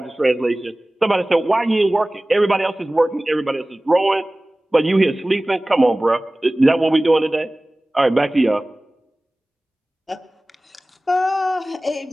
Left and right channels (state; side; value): normal; both; correlation 0.98